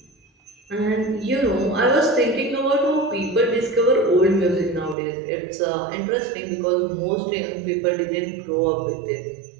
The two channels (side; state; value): left; drops out; at 5.0 s